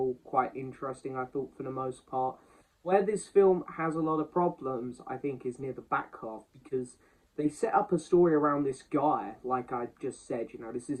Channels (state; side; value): identical; both; correlation 1.00